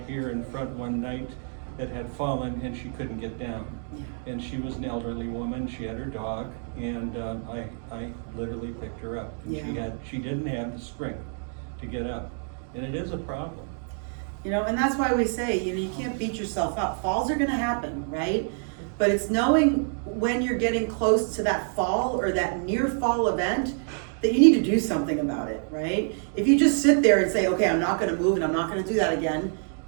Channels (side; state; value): left; silent; 55 dB below the other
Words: here in front one night that had fallen and she couldn't get down. And she was an elderly woman, she had her dog, and I literally picked her up. And Yeah. she didn't have the strength to get up, and it is a problem. You know, and that's why we say, you know, you can't beat yourself up. Falls are gonna happen, right? But it's knowing when you're getting close to that fall or that near fall event that you need to do something about it, right? If you just sit there and say, okay, I'm not gonna move and I'm not gonna do that again,